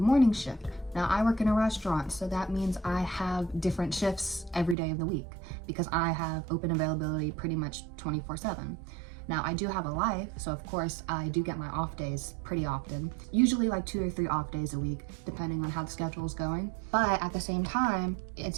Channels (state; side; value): drops out; left; at 4.8 s